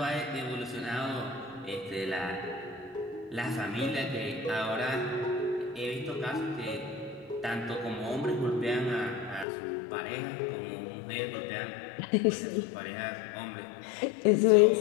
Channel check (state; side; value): drops out; right; at 9.5 s